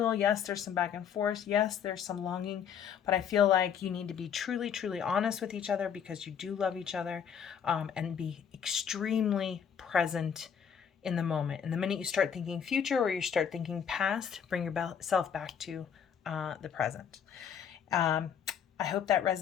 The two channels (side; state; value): right; quieter; 7.9 dB